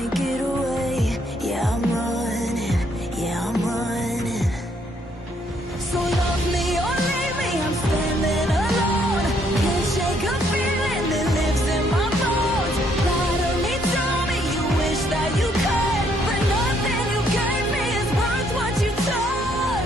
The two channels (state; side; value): normal; both; correlation 0.70